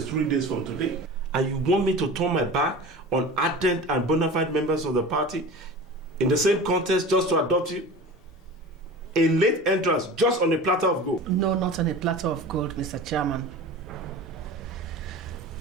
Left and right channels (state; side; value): normal; both; correlation 0.35